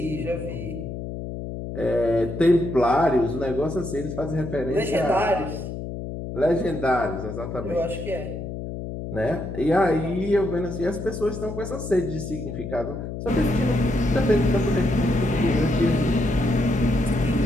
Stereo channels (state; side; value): noise; left; hum, 7 dB below the sound